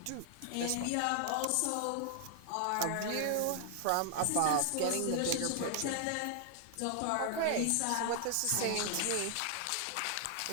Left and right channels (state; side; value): different; both; correlation 0.00